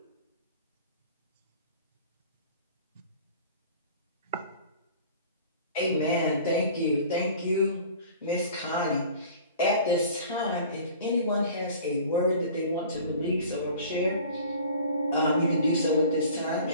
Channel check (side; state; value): both; inverted; correlation -0.45